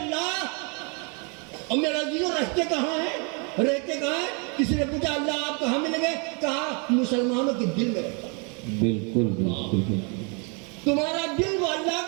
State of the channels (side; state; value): left; quieter; 35.2 dB